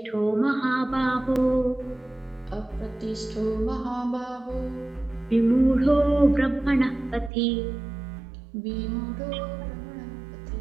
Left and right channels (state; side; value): drops out; left; at 7.3 s